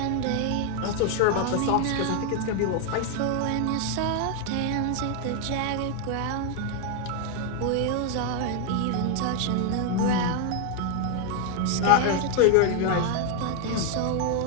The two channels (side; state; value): both; different; correlation 0.00